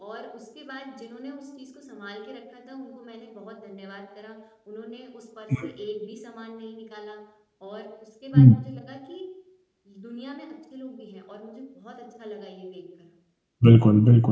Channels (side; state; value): both; identical; correlation 1.00